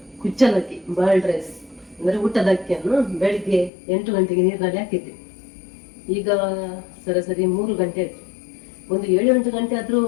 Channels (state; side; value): drops out; right; at 3.7 s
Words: ಕುಚ್ಚಲಕ್ಕಿ ಬಾಯ್ಲ್ಡ್ ರೈಸ್ ಅಂದ್ರೆ ಊಟದ ಅಕ್ಕಿಯನ್ನು ಬೆಳಿಗ್ಗೆ 8 ಗಂಟೆಗೆ ನೀರಿನಲ್ಲಿ ಹಾಕಿದ್ದೆ. ಈಗ ಸರಾಸರಿ 3 ಗಂಟೆ ಆಯ್ತು. ಒಂದು 7-8 ಗಂಟೆ ಆದ್ರೂ